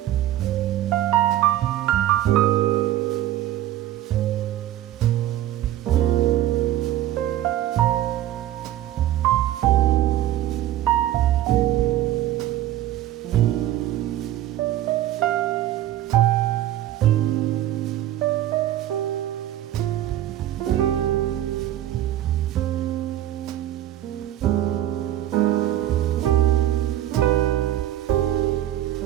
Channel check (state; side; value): quieter; left; 13.1 dB